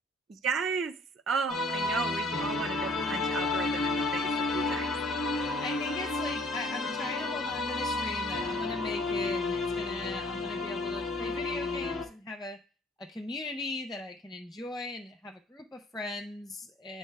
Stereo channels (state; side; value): normal; both; correlation 0.56